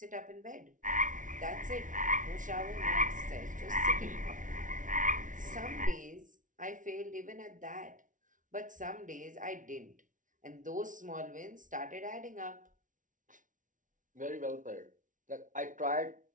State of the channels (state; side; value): late; left; 0.38 ms